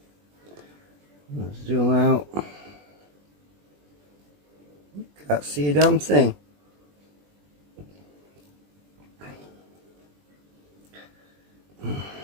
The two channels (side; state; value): left; late; 20 ms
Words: Let's zoom out. Can't see a damn thing.